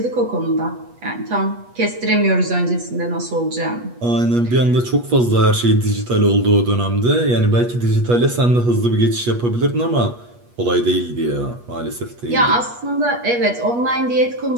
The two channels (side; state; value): left; late; 8.3 ms